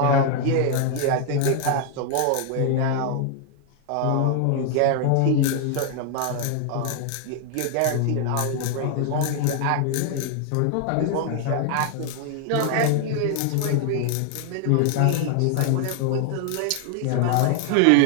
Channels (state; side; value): different; both; correlation 0.00